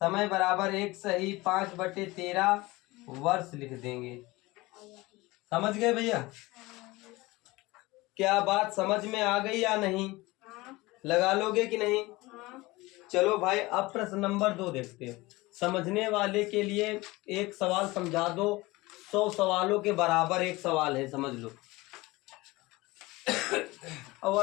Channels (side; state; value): right; quieter; 21.2 dB